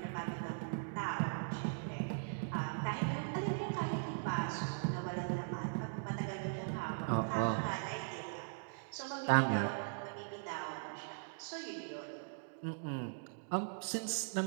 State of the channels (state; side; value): silent; left; digital silence